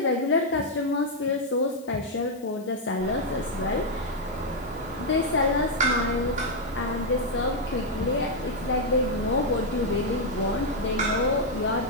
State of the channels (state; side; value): noise; left; hiss, 25 dB below the sound